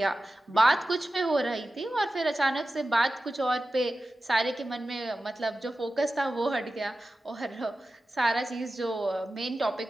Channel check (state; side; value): normal; both; correlation 0.94